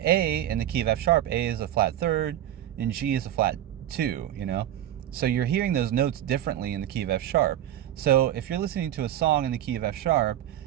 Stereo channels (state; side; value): quieter; left; 12.1 dB